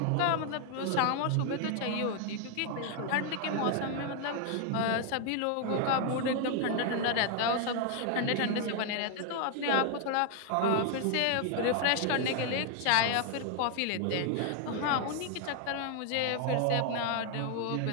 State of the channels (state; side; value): different; both; correlation 0.00